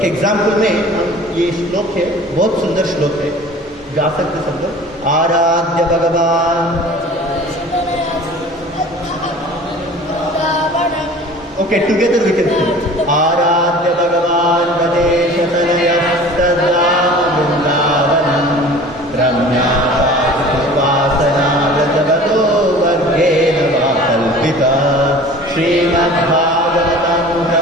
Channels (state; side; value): normal; both; correlation 0.43